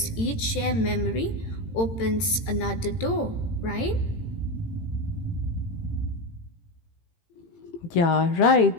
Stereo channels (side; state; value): right; late; 18 ms